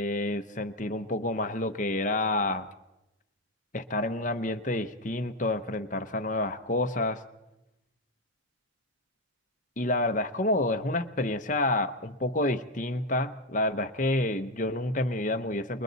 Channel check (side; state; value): both; normal; correlation 0.09